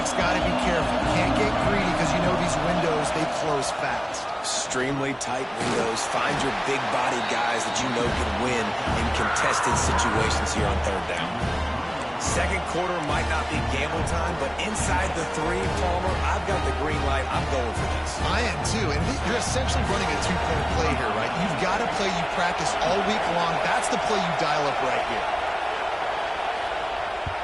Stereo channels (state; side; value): identical; both; correlation 1.00